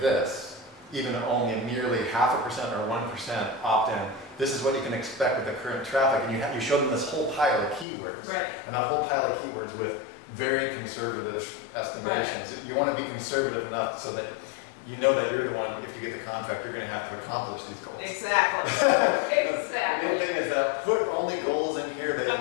even only nearly 0.5% or 1% opt-in, this is what you can expect with the current traffic. And you show them this whole pile of keywords. Right. And that whole pile of keywords with very conservative estimations. Right. You want to be conservative enough so that you know that you're the one, if you get the contract, you're going to have to accomplish these goals. Exactly. Exactly. The main thing is that put only goals in here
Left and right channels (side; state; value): right; drops out; at 7.9 s